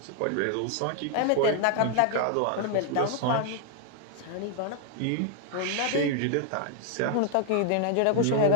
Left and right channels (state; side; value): different; both; correlation 0.00